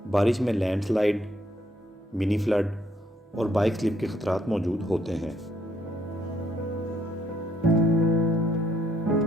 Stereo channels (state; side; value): normal; both; correlation 0.70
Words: बारिश में लैंडस्लाइड, मिनी फ्लड और बाइक स्लिप के खतरात मौजूद होते हैं।